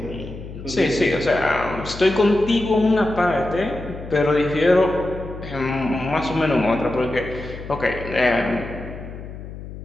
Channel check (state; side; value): noise; left; hum, 12 dB below the sound